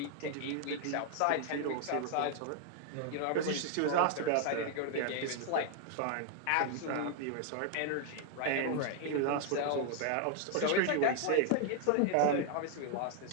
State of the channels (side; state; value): both; different; correlation 0.00